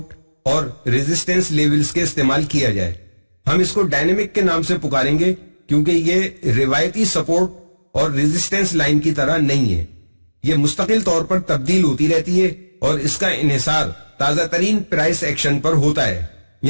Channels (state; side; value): inverted; both; correlation -1.00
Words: اور ریزسٹنس لیولز کے استعمال کیا جائے. ہم اس کو ڈائنامک کے نام سے پکاریں گے کیونکہ یہ روایتی سپورٹ اور ریزسٹنس لائن کی طرح نہیں ہے. یہ مستقل طور پر تبدیل ہوتی رہتی ہے اور اس کا انحصار تازہ ترین پرائس ایکشن پر ہوتا ہے.